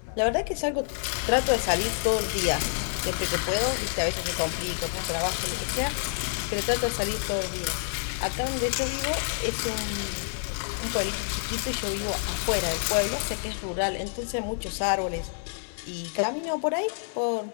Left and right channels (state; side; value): silent; right; 58 dB below the other